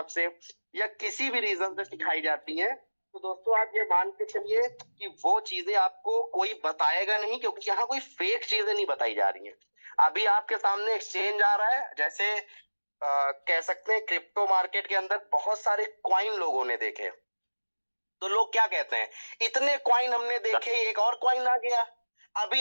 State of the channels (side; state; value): both; inverted; correlation -1.00